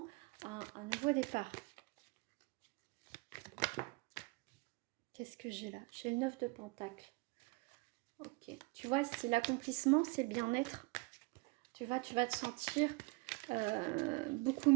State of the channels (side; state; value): left; quieter; 27.7 dB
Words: un nouveau départ. Qu'est-ce que j'ai là? J'ai le 9 de Pentacle. Ok. Tu vois, si l'accomplissement, c'est le bien-être, tu vas te sentir beaucoup